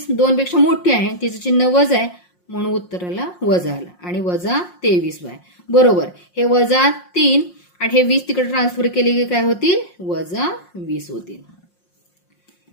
2 पेक्षा मोठी आहे, तिचं चिन्ह वजा आहे म्हणून उत्तराला वजा आलं आणि -23y बरोबर. हे -3 आणि हे 20 तिकडे ट्रान्सफर केले की काय होतील, -20 होतील.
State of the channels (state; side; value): late; right; 5.6 ms